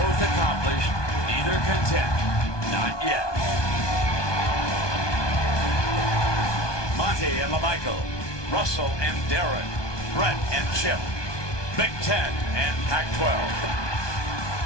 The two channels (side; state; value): right; late; 1.2 ms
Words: accomplished, neither content, not yet. Monty and LaMichael, Russell and Darren, Brett and Chip, Big Ten and Pac-12.